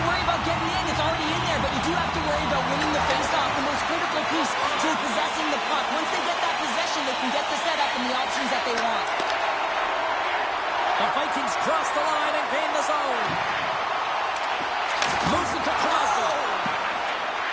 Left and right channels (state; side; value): identical; both; correlation 1.00